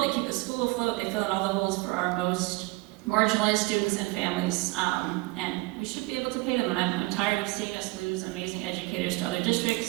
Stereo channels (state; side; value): quieter; left; 23.8 dB